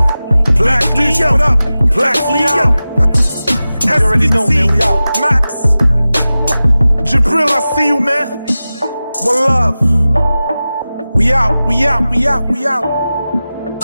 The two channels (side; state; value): both; inverted; correlation -0.96